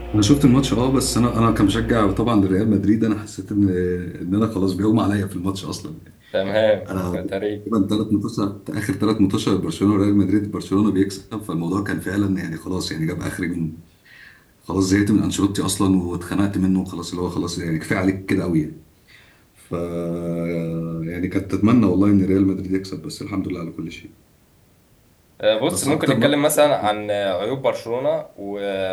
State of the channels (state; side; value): identical; both; correlation 1.00